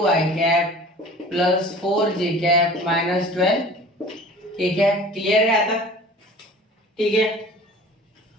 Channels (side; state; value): both; normal; correlation 0.44